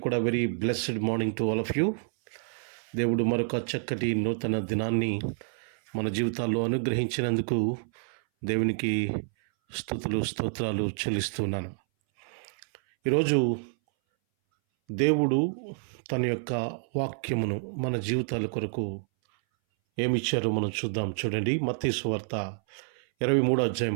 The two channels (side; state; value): left; silent; 59 dB below the other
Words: కూడా very blessed morning to all of you. దేవుడు మరొక చక్కటి నూతన దినాన్ని మన జీవితాల్లో అనుగ్రహించినందుకు దేవునికి స్తుతులు స్తోత్రాలు చెల్లిస్తున్నాను. ఈరోజు దేవుడు తన యొక్క వాక్యమును మన జీవితాల కొరకు ఏమిచ్చారో మనం చూద్దాం. చూడండి, మత్తయి సువార్త